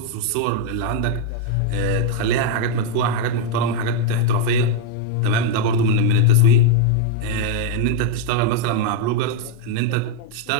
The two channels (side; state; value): both; different; correlation 0.01